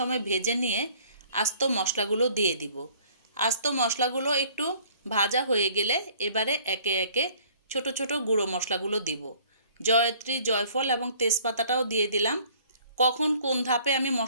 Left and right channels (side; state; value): both; inverted; correlation -0.55